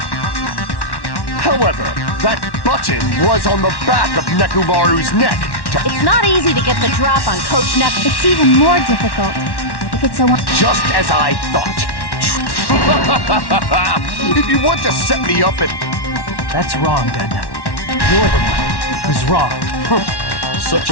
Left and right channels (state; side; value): late; right; 1.1 ms